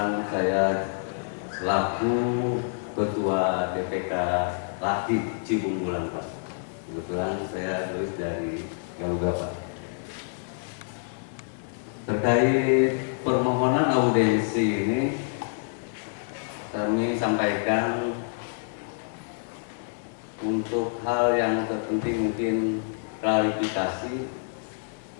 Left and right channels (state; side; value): silent; right; digital silence